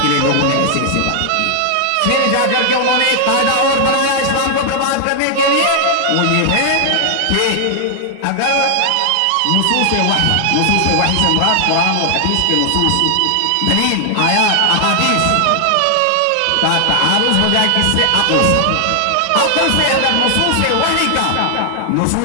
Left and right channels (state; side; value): different; both; correlation 0.00